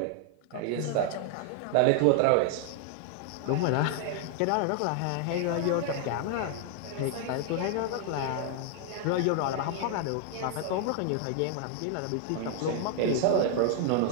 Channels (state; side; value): different; both; correlation 0.00